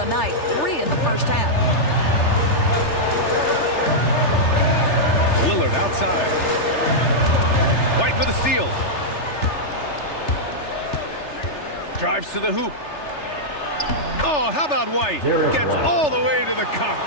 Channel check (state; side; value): late; right; 3.3 ms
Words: night. 3 in the first half. Lillard outside. White with a steal. Drives to the hoop. Oh, how about White? Gets all the way to the cup.